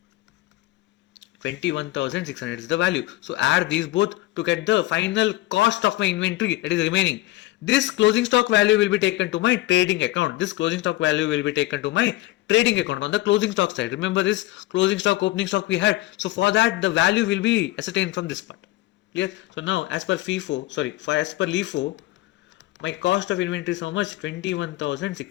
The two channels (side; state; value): right; quieter; 17.7 dB